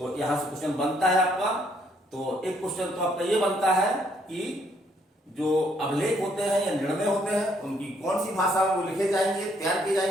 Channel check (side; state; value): both; normal; correlation 0.69